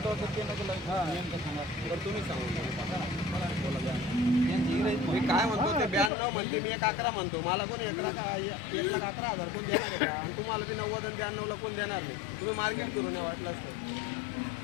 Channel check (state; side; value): drops out; right; at 6.1 s